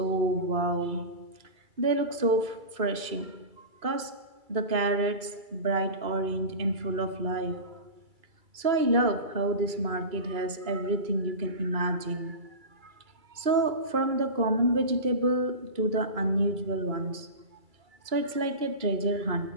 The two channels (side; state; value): left; late; 2.3 ms